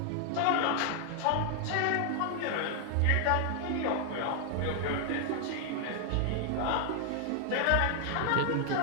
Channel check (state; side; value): different; both; correlation 0.00